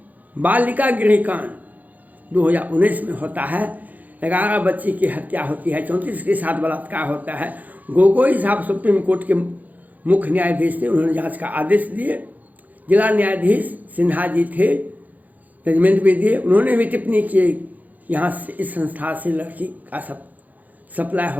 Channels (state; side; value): late; left; 0.080 ms